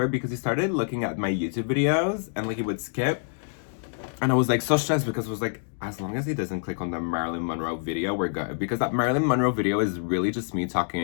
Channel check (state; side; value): silent; right; digital silence